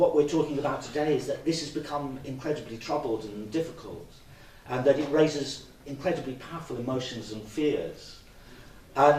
we're talking about today is that this has become incredibly troubled and difficult, and that it raises incredibly powerful emotions and fears.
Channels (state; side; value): identical; both; correlation 1.00